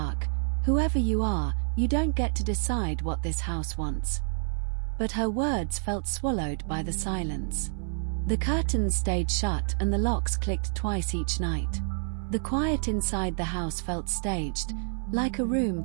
"Whoever you are, you don't get to decide what this house wants." But her words felt swallowed by the silence. The curtains stayed shut and the locks clicked twice each night. The quiet inside the house felt staged, like a room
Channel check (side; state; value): left; silent; 59 dB below the other